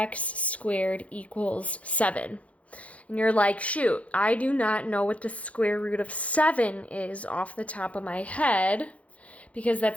squared equals 7. And you're like, shoot, I do not know what the square root of 7 is off the top of my head, because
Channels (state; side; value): late; right; 0.065 ms